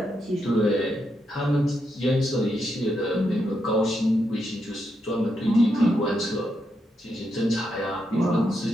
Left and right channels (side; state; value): both; normal; correlation 0.82